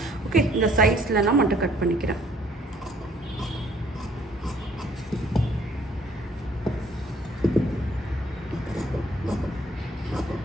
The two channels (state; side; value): normal; both; correlation 0.61